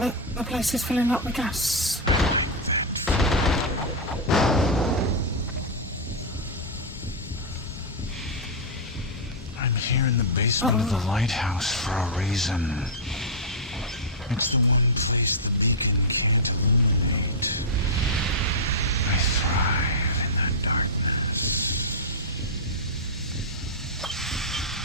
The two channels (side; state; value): both; normal; correlation -0.07